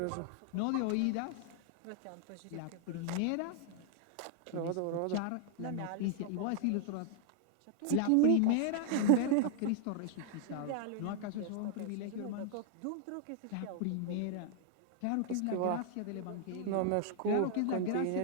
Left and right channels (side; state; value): both; different; correlation 0.00